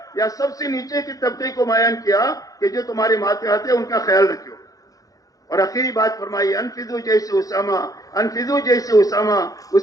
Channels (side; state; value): right; late; 0.17 ms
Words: یا سب سے نیچے کی طبقے کو بیان کیا کہ جو تمہارے ماتحت ہے ان کا خیال رکھو۔ اور آخری بات فرمائی انفذو جیسے اسامہ، انفذو جیسے اسامہ،